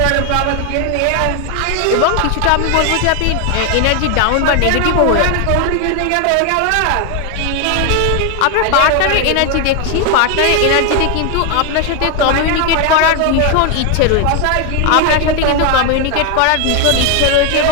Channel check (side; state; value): both; different; correlation 0.01